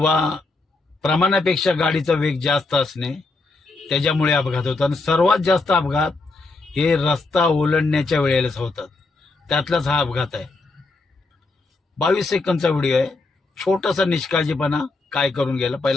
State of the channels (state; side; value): quieter; right; 3.5 dB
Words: प्रमाणापेक्षा गाडीचा वेग जास्त असणे, त्याच्यामुळे अपघात होतात. आणि सर्वात जास्त अपघात हे रस्ता ओलांडण्याच्या वेळेलाच होतात. त्यातलाच हा अपघात आहे. 22 सेकंदचा व्हिडिओ आहे. छोटासा निष्काळजीपणा काय करून गेला,